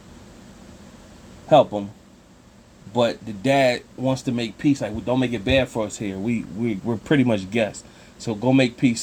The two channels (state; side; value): identical; both; correlation 1.00